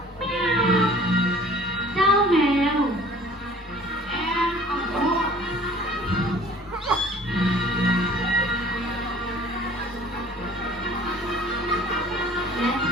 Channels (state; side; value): normal; both; correlation 0.51